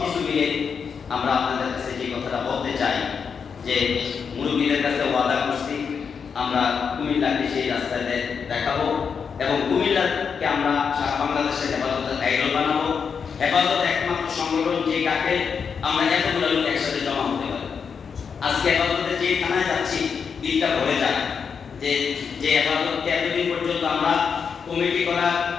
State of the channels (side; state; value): right; quieter; 6.3 dB